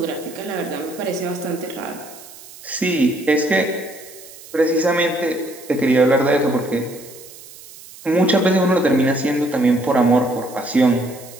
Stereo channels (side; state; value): right; noise; hiss, 19 dB below the sound